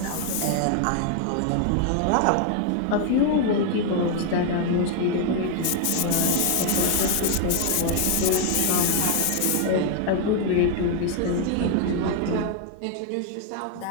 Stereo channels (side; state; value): both; different; correlation 0.00